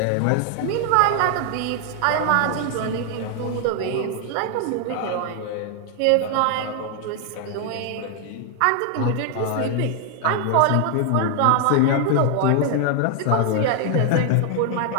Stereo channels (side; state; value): both; different; correlation 0.00